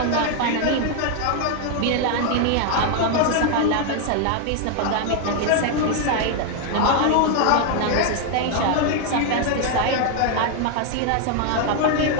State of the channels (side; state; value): both; different; correlation 0.01